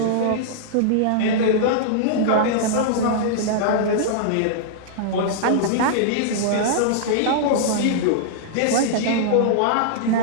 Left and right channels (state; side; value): different; both; correlation -0.02